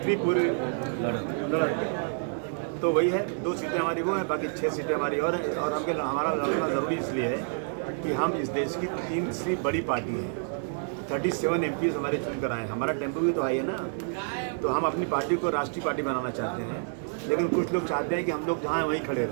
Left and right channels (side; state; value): left; silent; 59 dB below the other